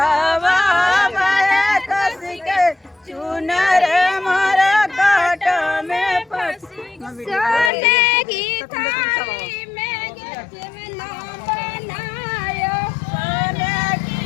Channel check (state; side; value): drops out; right; at 7.7 s